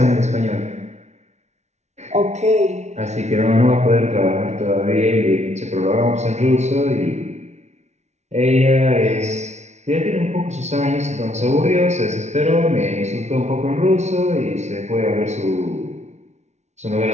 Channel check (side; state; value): left; late; 0.32 ms